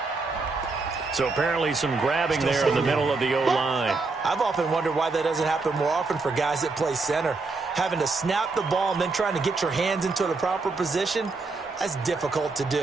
So apparently some grabbing there in the middle of the O-line. I've often wondered why that doesn't happen more often for guys that play center. Having to snap the ball and then trying to get your hands into the proper position, that's difficult to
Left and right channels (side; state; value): left; quieter; 3.9 dB